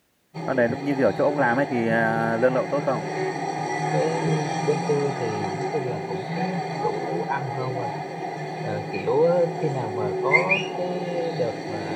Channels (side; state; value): both; identical; correlation 1.00